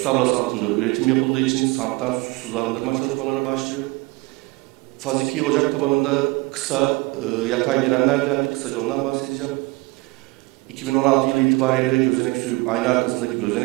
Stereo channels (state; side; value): quieter; left; 23.6 dB